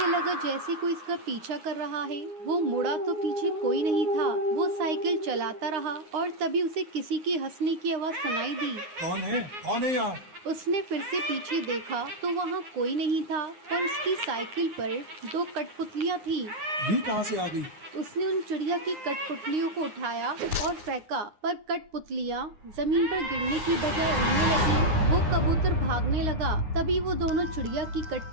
लगा जैसे कोई इसका पीछा कर रहा है। वो मुड़ा तो पीछे कोई नहीं था। वो साइकिल चलाता रहा और तभी उसे किसी की हंसने की आवाज सुनाई दी। कौन है? कौन है यहाँ? उसने फिर से पीछे देखा तो वहाँ कोई नहीं था, पर उसकी साइकिल पर दो कठपुतलियाँ थी। ये कहाँ से आ गई? उसने उन चिड़िया की कठपुतलियों को उठाया और फेंका, पर कठपुतलियाँ जमीन पर गिरने की बजाय उड़ने लगी। वो कबूतर भागने लगा। तभी वो दोनों चिड़िया की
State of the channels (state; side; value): late; left; 9.6 ms